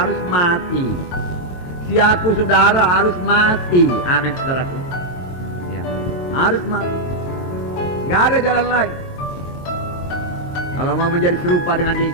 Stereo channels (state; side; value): late; right; 22 ms